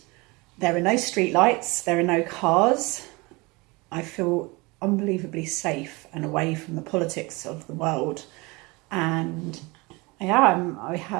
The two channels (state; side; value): quieter; left; 25.3 dB